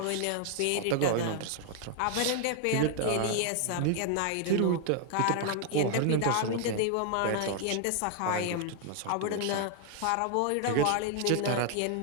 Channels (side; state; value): both; different; correlation 0.00